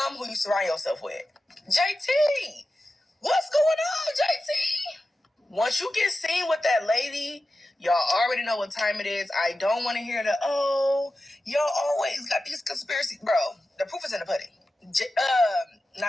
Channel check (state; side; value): normal; both; correlation 0.93